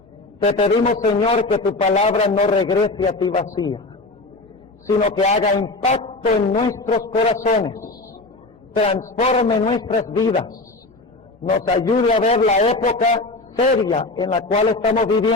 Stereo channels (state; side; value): quieter; right; 3.1 dB